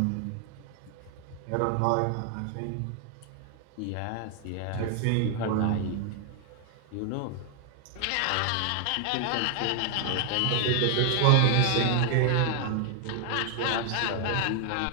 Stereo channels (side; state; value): both; different; correlation 0.00